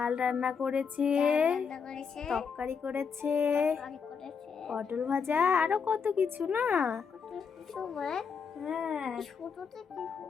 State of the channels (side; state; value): right; quieter; 6.0 dB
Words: রান্না করেছে, রান্না করেছে, তরকারি করেছে, তরকারি করেছে, পটল ভাজা, আরো কত কিছু না। কত কিছু মা। হ্যাঁ, ছোটতে কি